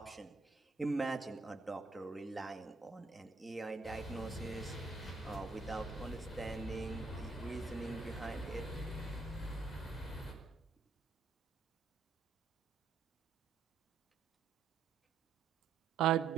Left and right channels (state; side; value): quieter; left; 4.3 dB